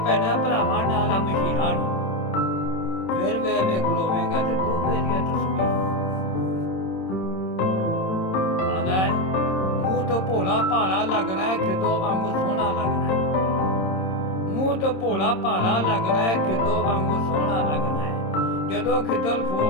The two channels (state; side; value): late; right; 26 ms